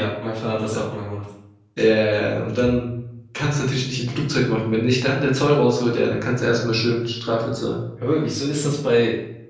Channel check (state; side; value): identical; both; correlation 1.00